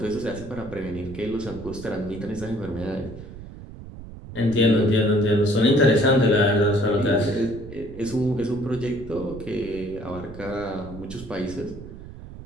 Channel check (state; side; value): noise; right; rumble, 14 dB below the sound